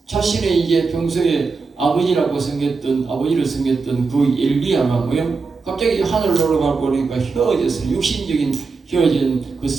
자신의 이제 평소에 아버지를 섬겼던 그 엘리야가 뭐요? 갑자기 하늘로 올라가 버리니까 헤어져서 육신적인 헤어진 그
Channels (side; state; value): left; quieter; 4.5 dB